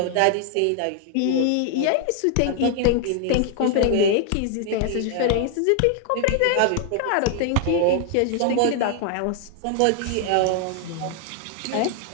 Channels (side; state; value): both; different; correlation 0.00